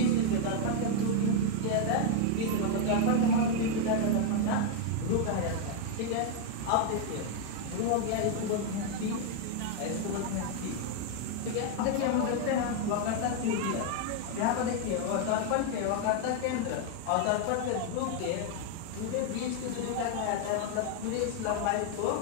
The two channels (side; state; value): both; different; correlation 0.00